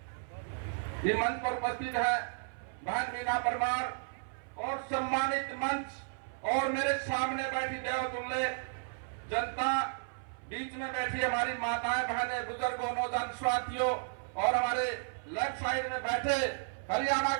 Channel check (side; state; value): left; silent; 55 dB below the other